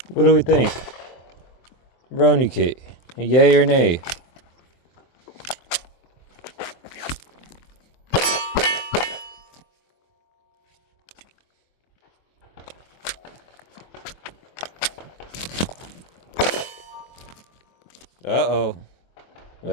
What do we think? Brony Kit, yay or nay? Uh-oh.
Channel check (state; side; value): late; right; 24 ms